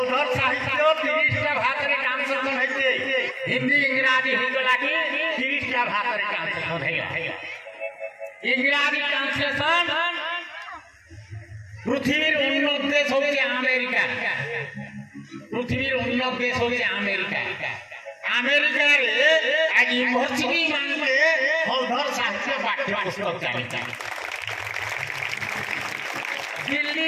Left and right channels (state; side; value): identical; both; correlation 1.00